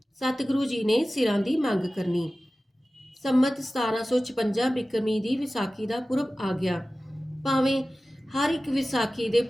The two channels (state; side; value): normal; both; correlation 0.96